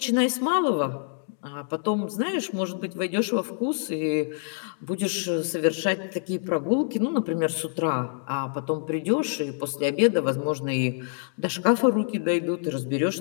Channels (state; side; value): silent; right; 59 dB below the other